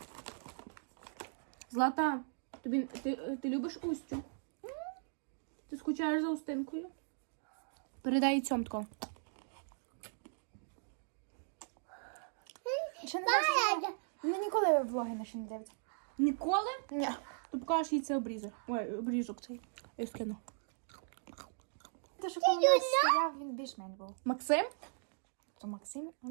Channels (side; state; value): left; silent; digital silence